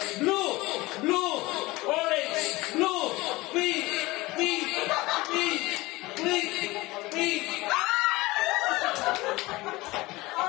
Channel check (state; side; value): quieter; right; 20.9 dB